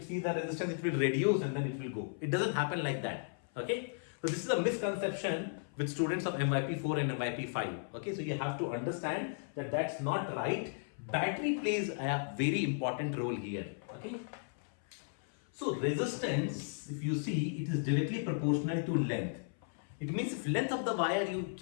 sees the resistance, it will reduce and then it will go. It doesn't happen like that. Okay? So this is a misconception with students of MYP 4 and MYP 5. Okay, so you have to understand that that's not right. Battery plays a very important role here. Okay. So resistance, if you see, it is directly proportional to length. It means if length of the wire, you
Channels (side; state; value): right; silent; 54 dB below the other